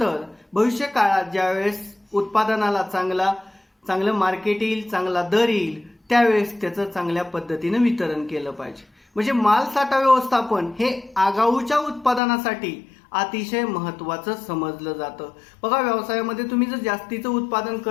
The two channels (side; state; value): right; drops out; at 12.2 s